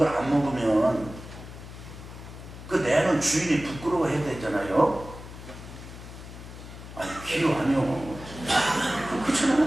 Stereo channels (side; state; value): left; noise; hum, 14 dB below the sound